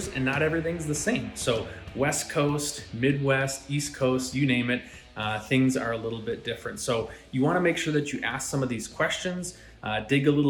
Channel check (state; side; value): identical; both; correlation 1.00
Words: and not everything's the same. So, West Coast, Midwest, East Coast, you name it, things are a little bit different. So, you want to make sure that you ask some of these questions. Dig a